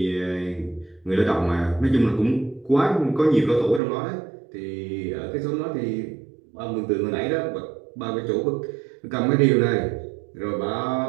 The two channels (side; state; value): left; drops out; at 3.8 s